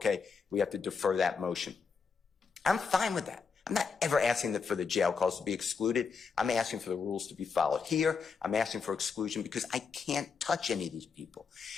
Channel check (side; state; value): right; quieter; 5.5 dB